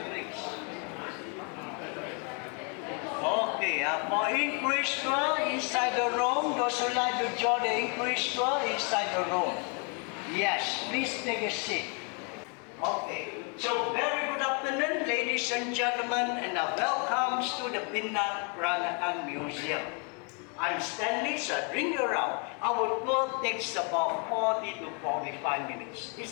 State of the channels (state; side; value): quieter; right; 36.6 dB